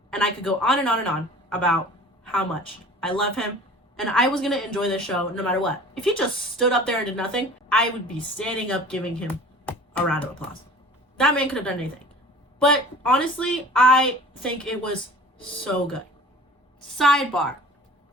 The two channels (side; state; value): both; normal; correlation 0.44